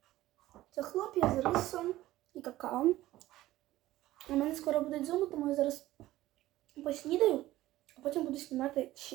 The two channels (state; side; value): quieter; left; 15.9 dB